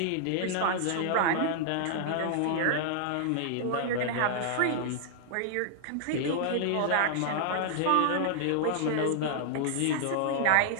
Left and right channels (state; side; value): different; both; correlation -0.01